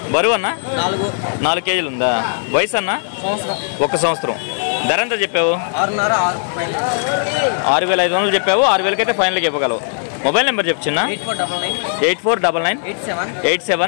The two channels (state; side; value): silent; right; digital silence